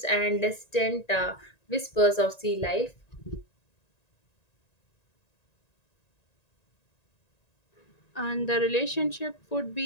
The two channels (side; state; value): right; late; 1.9 ms